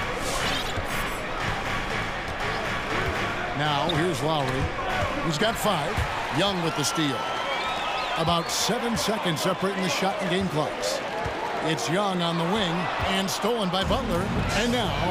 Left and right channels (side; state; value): both; identical; correlation 1.00